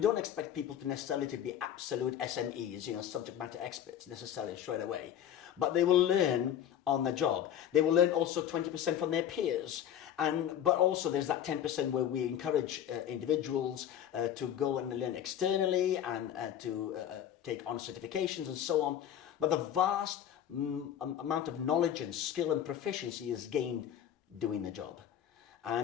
don't expect people to necessarily to be absolute SMEs, subject matter experts necessarily straight away. But they will learn on the job. They will learn also 20% from their peers. But also there's that 10% where we encourage individuals to go and learn externally and to take on certifications and so on. But the vast amount of knowledge and skill and proficiency is gained doing the job.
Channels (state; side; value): quieter; right; 10.1 dB